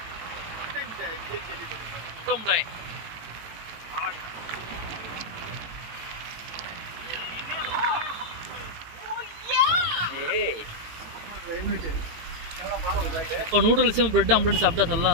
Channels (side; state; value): left; late; 18 ms